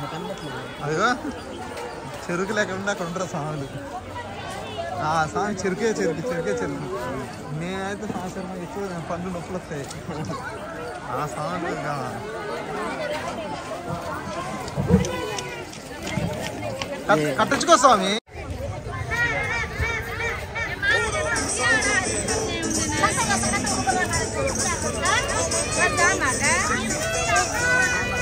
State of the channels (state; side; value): identical; both; correlation 1.00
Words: అదిగో చెరుకు లేకుండా అక్కడ ఉంటారు స్వాములు. స్వామి చెరుకే నేనైతే సంవత్సరం ఎక్కువ పండ్లు నొప్పులు వస్తాయి. ఆ స్వామి కట్టించుకో స్వామి.